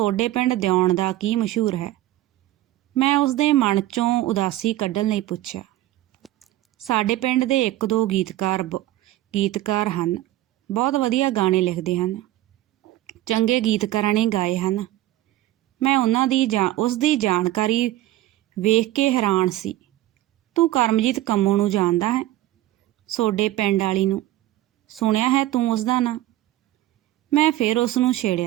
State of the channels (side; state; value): left; quieter; 15.0 dB